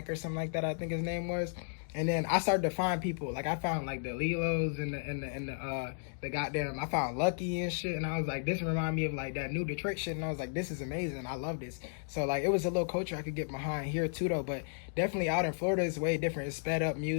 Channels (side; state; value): right; silent; digital silence